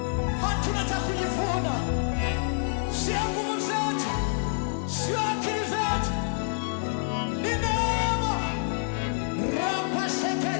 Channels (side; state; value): right; silent; digital silence